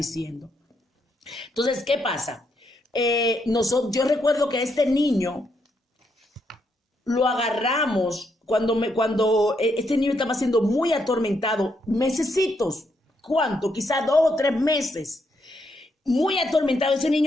Entonces, ¿qué pasa? Yo recuerdo que a este niño lo agarramos cuando este niño estaba siendo muy atormentado, mesecitos. ¿Cuánto? Quizás 2 o 3 meses. Muy atormentado, ese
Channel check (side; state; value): both; normal; correlation 0.77